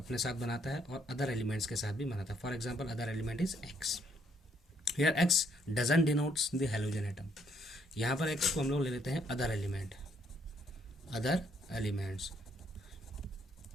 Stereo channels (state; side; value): normal; both; correlation 0.70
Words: साथ बनाता है और अदर एलिमेंट्स के साथ भी बनाता है। For example other element is x. Here x doesn't denotes the halogen atom. यहाँ पर एक्स को हम लोग ले लेते हैं अदर एलिमेंट, अदर एलिमेंट्स।